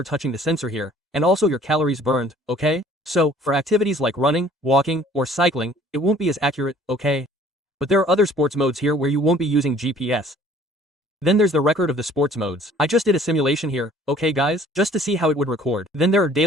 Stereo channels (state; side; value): normal; both; correlation 0.54